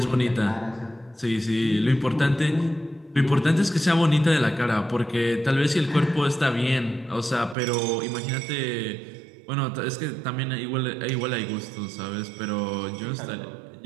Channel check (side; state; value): left; drops out; at 7.6 s